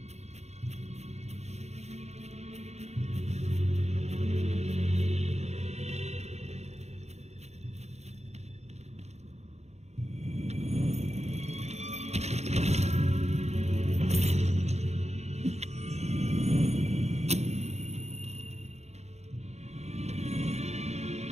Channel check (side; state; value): left; late; 0.32 ms